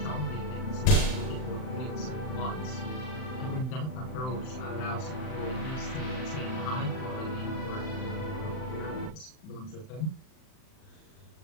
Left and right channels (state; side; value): late; right; 39 ms